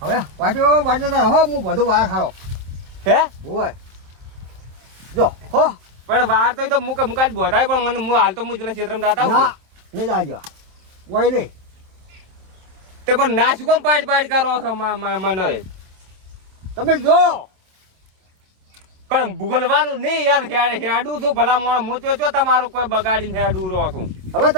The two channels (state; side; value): late; left; 27 ms